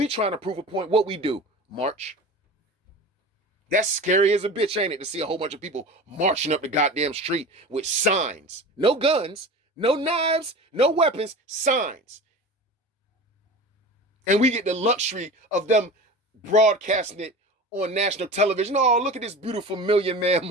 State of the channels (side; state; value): both; normal; correlation 0.34